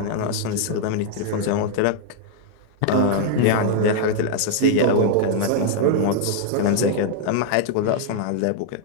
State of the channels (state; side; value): different; both; correlation 0.00